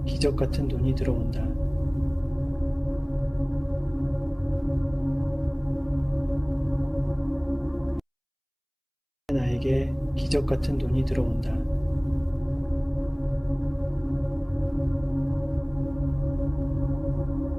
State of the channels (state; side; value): identical; both; correlation 1.00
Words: 기적 같은 돈이 들어온다. 나에게 기적 같은 돈이 들어온다.